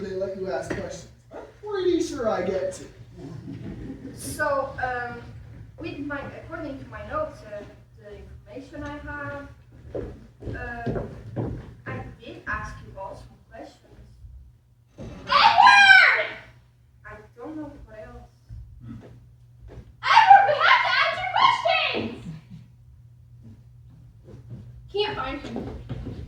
they let you ask questions. I'm pretty sure I get to. So, according to my notes, the information I have, I did ask you all some questions. Edward! I don't know what else. Edward, we have to answer questions! Can't find him.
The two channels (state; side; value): identical; both; correlation 1.00